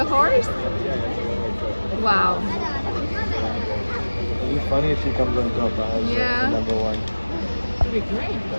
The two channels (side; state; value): both; inverted; correlation -1.00